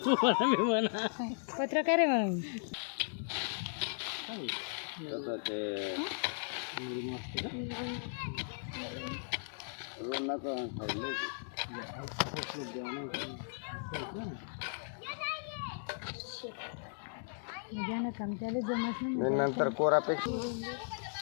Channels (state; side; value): silent; right; digital silence